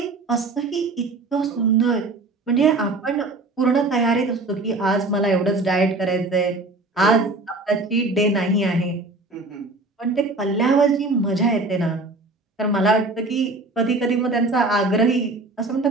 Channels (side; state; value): left; quieter; 3.2 dB